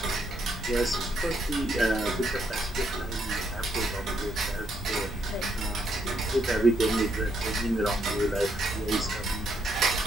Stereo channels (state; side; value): normal; both; correlation 0.75